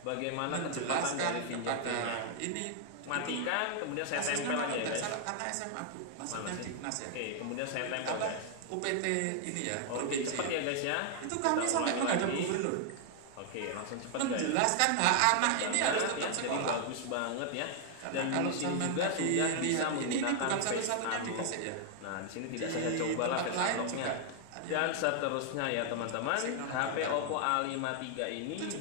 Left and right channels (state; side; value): different; both; correlation 0.00